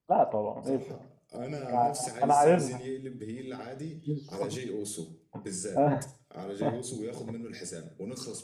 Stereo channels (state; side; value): identical; both; correlation 1.00